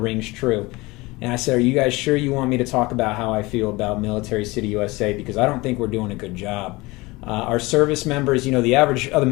rings true. And I said, are you guys sure you want me to talk about how I feel about military city USA? Because I don't think we're doing a good job. Our service members, the average of the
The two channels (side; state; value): right; quieter; 22.4 dB